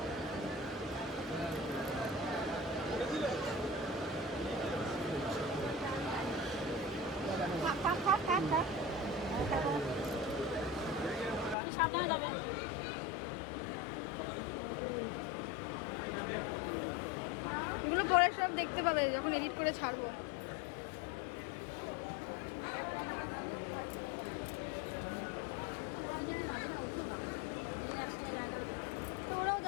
সাবধানে যাবে। এগুলো পরে সব দেখতে পাবে যখন এডিট করে ছাড়বো। তো ওরাও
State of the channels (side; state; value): right; drops out; at 11.6 s